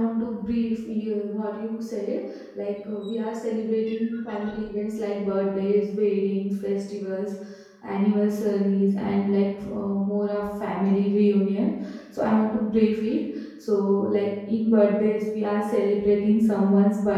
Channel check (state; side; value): identical; both; correlation 1.00